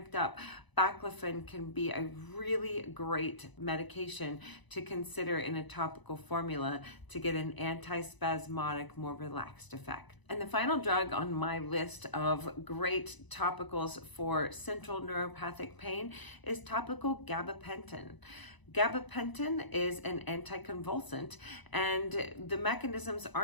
up, baclofen can be a really great medication to consider in a topical formula to get an antispasmodic, more relaxed effect. And the final drug on my list of great topicals for central neuropathic pain is topical gabapentin. Gabapentin is an anticonvulsant, and the mechanisms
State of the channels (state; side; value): late; right; 1.0 ms